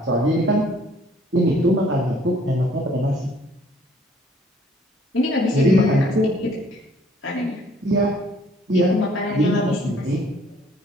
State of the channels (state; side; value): normal; both; correlation 0.60